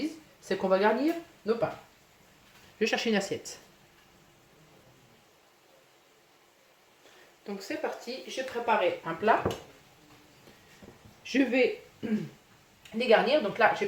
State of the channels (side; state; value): both; identical; correlation 1.00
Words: c'est qu'on va garnir nos pains. Je vais chercher une assiette. Donc c'est parti, j'ai préparé un plat. Je vais les garnir. Donc là, j'ai